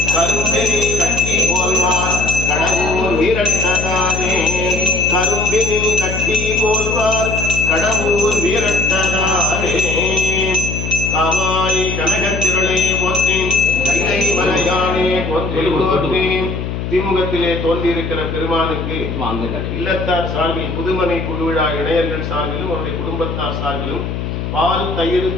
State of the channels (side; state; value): left; noise; hum, 4 dB below the sound